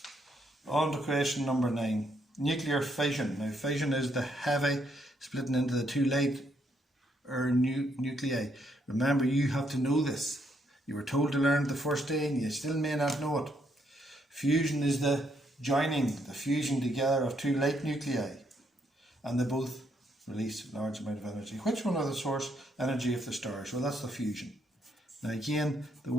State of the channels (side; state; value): both; normal; correlation 0.74